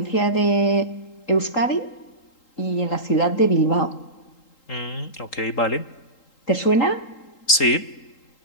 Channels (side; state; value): right; late; 3.8 ms